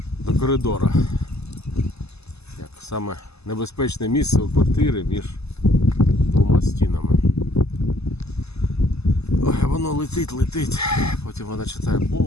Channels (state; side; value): late; right; 0.79 ms